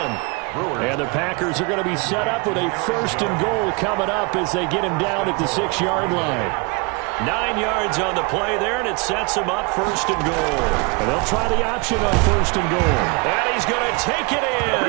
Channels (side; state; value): left; quieter; 30.0 dB